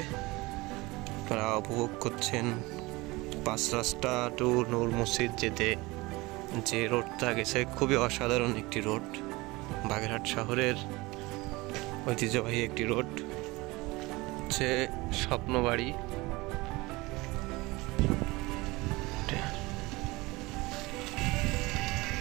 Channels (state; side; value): quieter; left; 22.4 dB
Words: আপনারা উপভোগ করছেন 5 রাস্তা টু নূর মসজিদ যেতে যে রোডটা গেছে, খুবই অসাধারণ একটি রোড। বাগেরহাট শহরের ঐতিহ্যবাহী একটি রোড, হচ্ছে স্বপ্নবাড়ি।